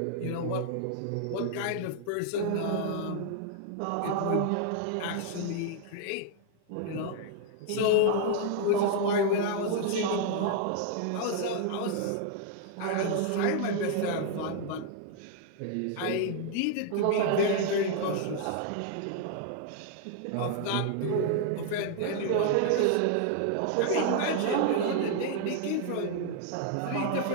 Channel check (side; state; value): both; different; correlation 0.00